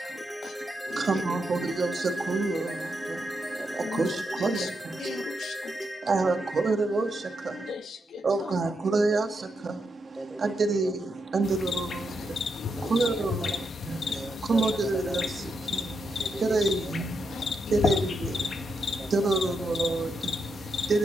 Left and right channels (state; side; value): normal; both; correlation 0.83